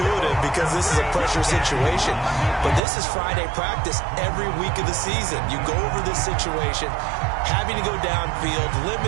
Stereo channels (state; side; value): drops out; left; at 2.8 s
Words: because this is a pressure situation. But this is Friday practice every week of the season. You go over this situation, having to go downfield,